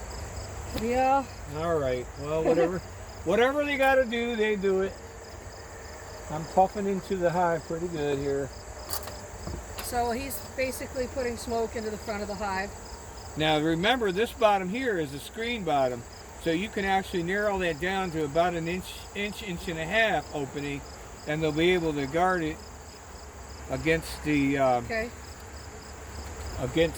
way. Yeah. All right. Well, whatever. Whatever they got to do, they do it. I'm puffing into the hive pretty good here. So he's basically putting smoke into the front of the hive. Now remember, this bottom here is a screen bottom, so you can actually narrow that down to about an inch and a half opening, and they'll be able to guard it against the Okay.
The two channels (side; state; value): both; identical; correlation 1.00